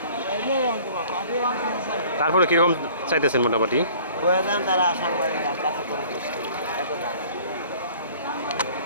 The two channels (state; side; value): inverted; both; correlation -0.50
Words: তারপরে কীরকম চাইতেছেন মোটামুটি?